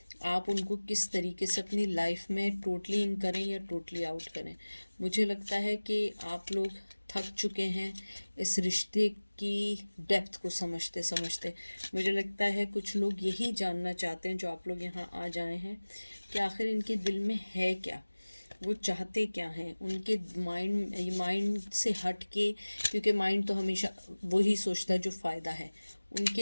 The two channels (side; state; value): both; inverted; correlation -1.00